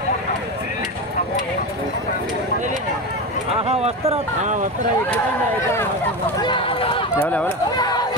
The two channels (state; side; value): normal; both; correlation 0.20